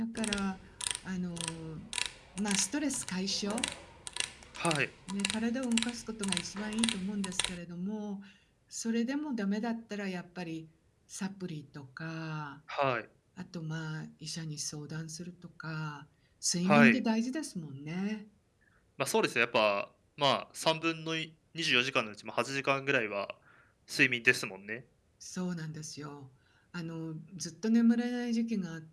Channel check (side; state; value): both; identical; correlation 1.00